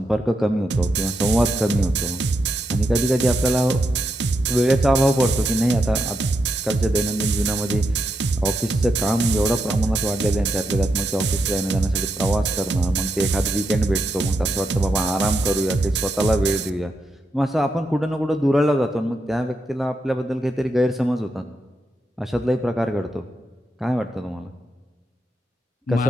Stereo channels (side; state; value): both; normal; correlation 0.83